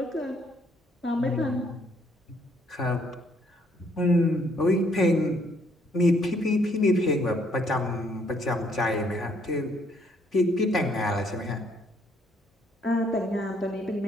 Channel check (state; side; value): normal; both; correlation 0.68